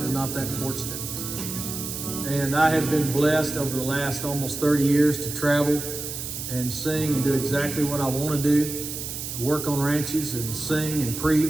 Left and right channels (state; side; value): noise; right; hiss, 6 dB below the sound